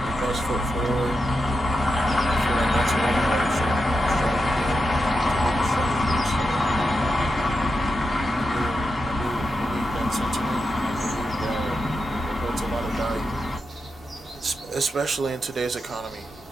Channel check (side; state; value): both; normal; correlation 0.87